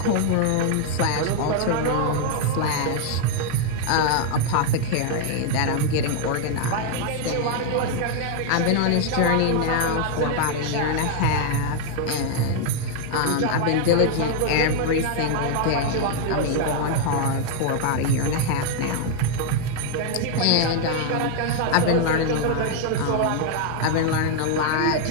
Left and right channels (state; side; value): different; both; correlation 0.00